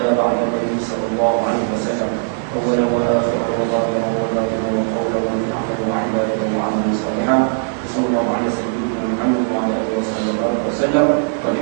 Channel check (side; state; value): left; silent; 67 dB below the other